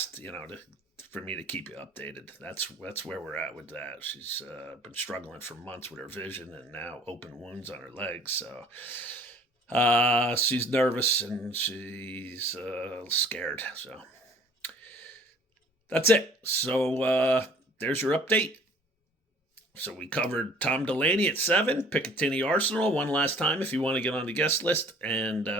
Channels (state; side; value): normal; both; correlation 0.53